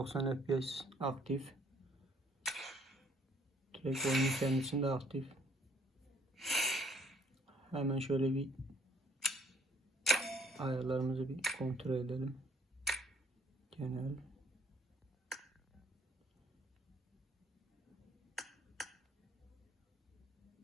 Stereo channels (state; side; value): normal; both; correlation 0.61